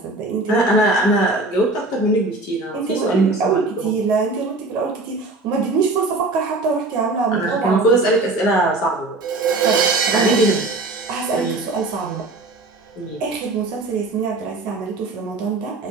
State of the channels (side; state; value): left; quieter; 3.0 dB